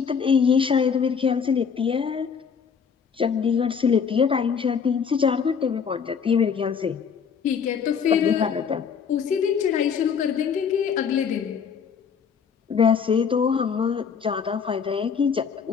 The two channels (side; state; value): right; quieter; 6.6 dB